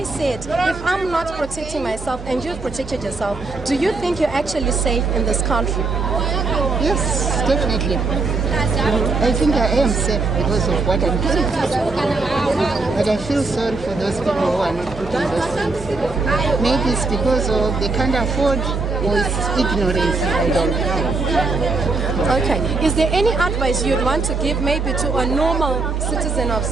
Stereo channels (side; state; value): left; quieter; 3.7 dB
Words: said, if I'm not protecting myself and you've protected yourself, do you think you're actually safe in this country? Yes, definitely. I think I am safe because of what I'm doing. But I feel sorry for those people who are not putting those things. Maybe it's because of they can't afford or it's ignorance. I don't know. Okay. Is there any advice you'd want to give maybe to a normal citizen of